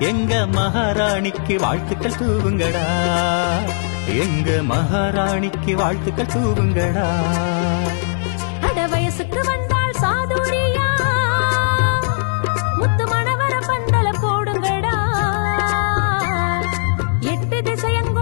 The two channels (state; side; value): silent; right; digital silence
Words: எங்க மகாராணிக்கு வாழ்த்துக்கள் தூவுங்கடா எங்க மகாராணிக்கு வாழ்த்துக்கள் தூவுங்கடா அட வயசுக்கு வந்தால் சாதுரியா முத்து மணவர பந்தல போடுங்கடா 8